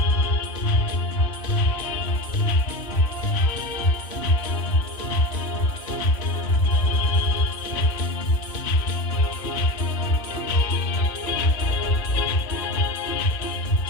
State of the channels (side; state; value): right; late; 2.4 ms